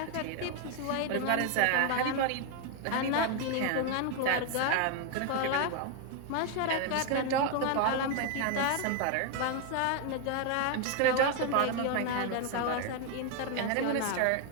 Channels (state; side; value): different; both; correlation 0.01